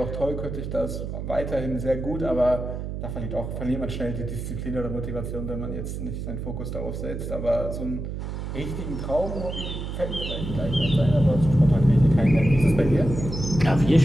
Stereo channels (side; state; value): right; noise; hum, 6 dB below the sound